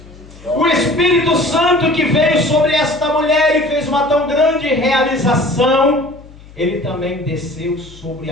O Espírito Santo que veio sobre esta mulher e fez uma tão grande realização, ele também desceu sobre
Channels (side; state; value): left; noise; hum, 21 dB below the sound